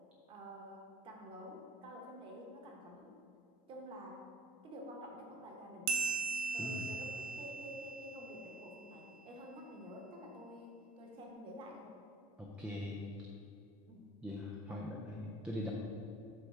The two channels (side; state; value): both; normal; correlation 0.52